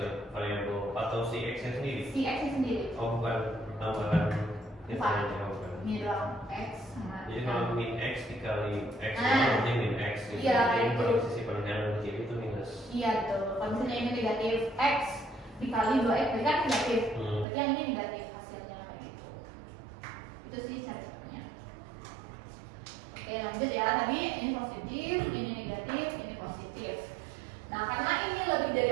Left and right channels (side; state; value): left; drops out; at 17.4 s